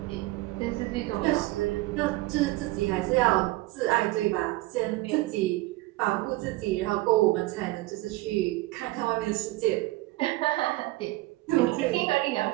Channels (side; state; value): left; quieter; 19.6 dB